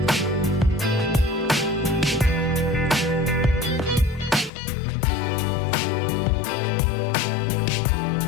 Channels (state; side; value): drops out; right; at 4.5 s